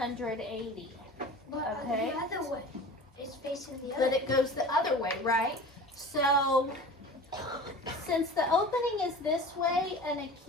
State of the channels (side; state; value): both; normal; correlation 0.38